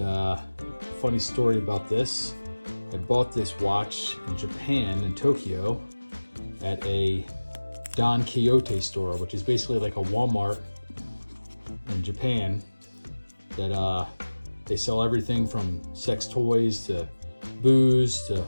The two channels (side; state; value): both; inverted; correlation -1.00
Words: funny story about this. I bought this watch in Japan, in Tokyo, at a Don Quixote store, which is basically like a Walmart in Japan. That they sell everything from sex toys to booze to